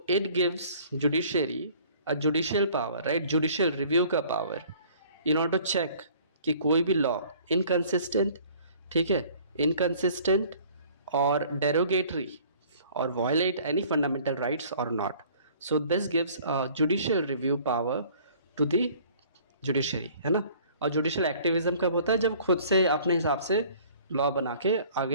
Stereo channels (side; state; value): both; inverted; correlation -0.53